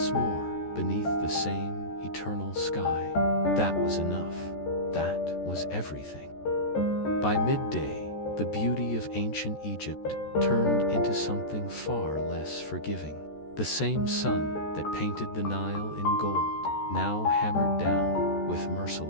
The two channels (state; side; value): late; right; 14 ms